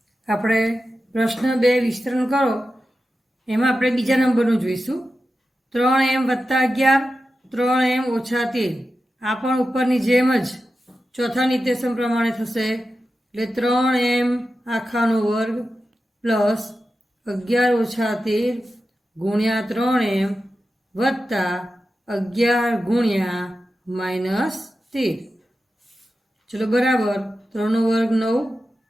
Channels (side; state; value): both; normal; correlation 0.92